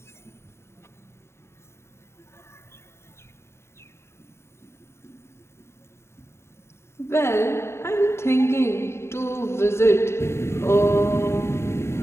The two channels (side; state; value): right; late; 0.13 ms